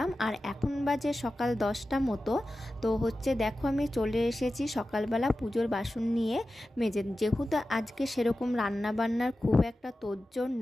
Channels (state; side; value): normal; both; correlation 0.94